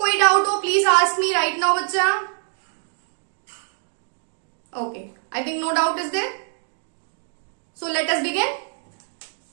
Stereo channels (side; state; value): left; silent; 61 dB below the other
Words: डाउट हो please ask me right now बच्चा। Okay, I think no doubt is there, so let us begin.